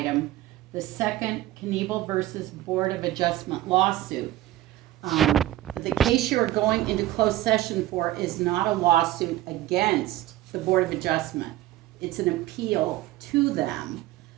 the second Knievel versus Board of Adjustment lawsuit. The case you're going into closed session for is not a lawsuit against the Board of Adjustment. It's an appeal to them.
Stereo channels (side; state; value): left; quieter; 15.1 dB